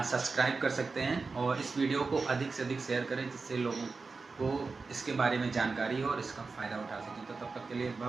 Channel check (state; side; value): quieter; left; 4.2 dB